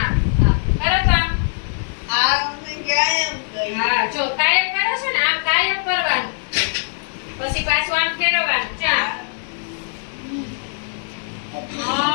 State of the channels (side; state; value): right; silent; 64 dB below the other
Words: કરો તો આમ. જો કાયમ